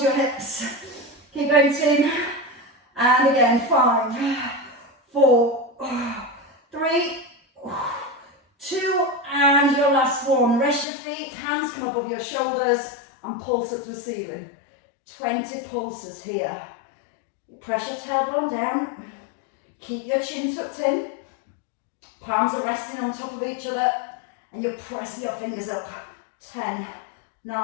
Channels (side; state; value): right; drops out; at 10.9 s